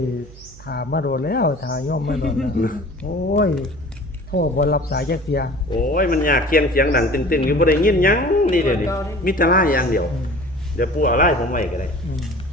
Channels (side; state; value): right; noise; hum, 20 dB below the sound